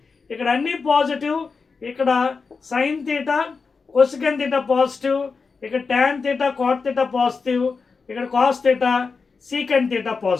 ఇక్కడ అన్ని పాజిటివ్, ఇక్కడ sine theta cosec theta positive, ఇక్కడ tan theta cot theta positive, ఇక్కడ cos theta secant theta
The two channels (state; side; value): quieter; right; 4.8 dB